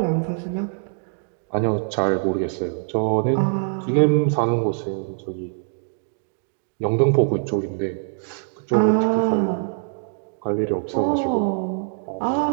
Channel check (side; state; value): left; silent; digital silence